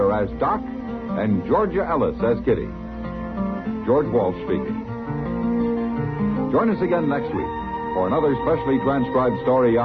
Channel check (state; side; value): identical; both; correlation 1.00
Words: as Doc, and Georgia Ellis as Kitty. George Walsh speaking. Join us again next week for another specially transcribed story